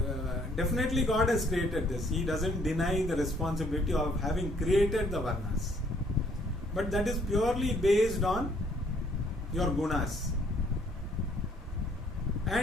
definitely God has created this. He doesn't deny the responsibility of having created the varnas, but that is purely based on your gunas,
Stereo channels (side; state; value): both; normal; correlation 0.64